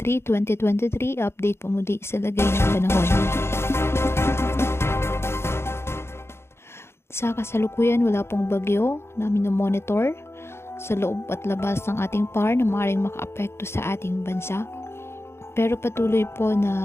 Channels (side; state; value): right; late; 0.12 ms